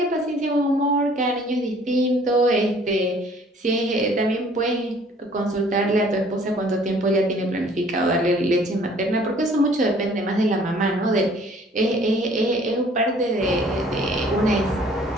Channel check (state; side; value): normal; both; correlation 0.56